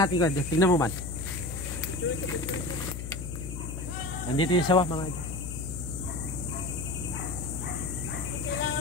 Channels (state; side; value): noise; left; hum, 7 dB below the sound